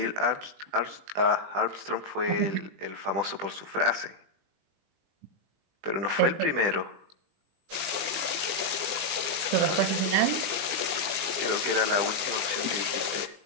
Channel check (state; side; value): late; left; 20 ms